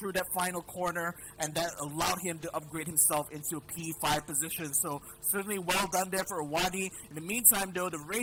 that final corner, and that allowed him to upgrade himself into a P5 position. So certainly well done there for Wadi. In the meantime though, the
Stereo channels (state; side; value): identical; both; correlation 1.00